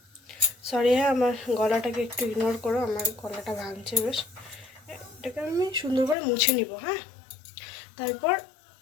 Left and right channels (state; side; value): drops out; right; at 6.2 s